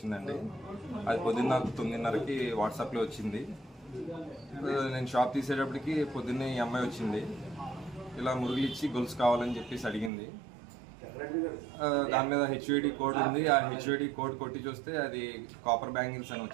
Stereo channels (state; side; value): drops out; left; at 10.1 s